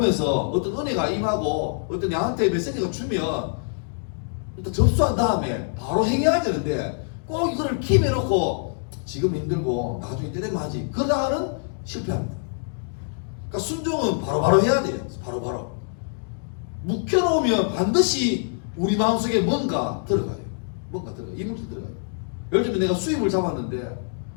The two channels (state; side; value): silent; right; 62 dB below the other